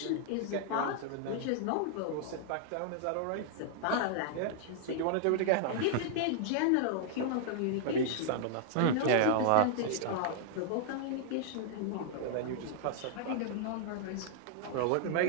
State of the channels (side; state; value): both; different; correlation -0.01